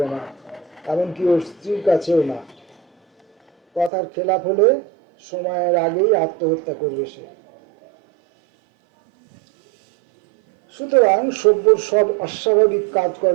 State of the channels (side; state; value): left; drops out; at 3.9 s